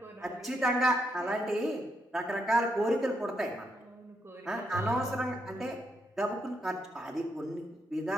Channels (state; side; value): normal; both; correlation 0.79